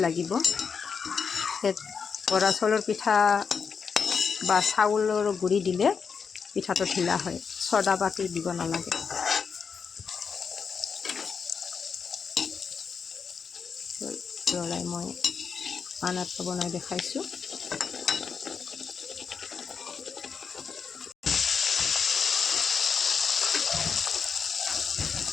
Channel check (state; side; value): quieter; right; 6.0 dB